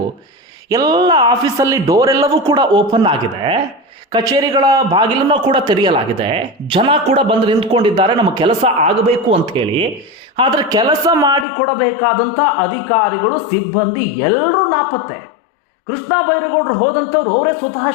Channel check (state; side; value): drops out; right; at 11.5 s